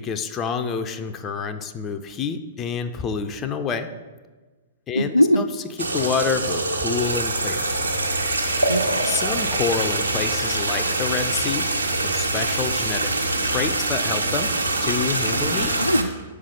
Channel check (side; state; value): both; inverted; correlation -0.50